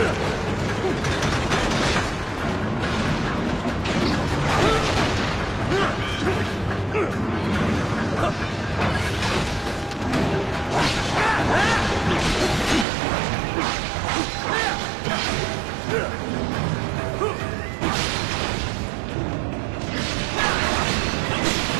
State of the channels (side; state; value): left; drops out; at 12.9 s